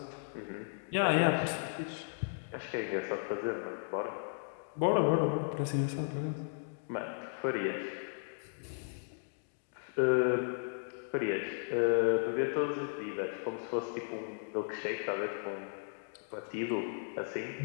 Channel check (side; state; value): right; silent; digital silence